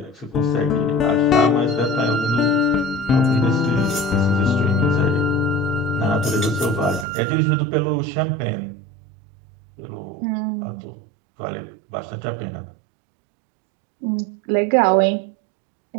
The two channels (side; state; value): left; drops out; at 7.1 s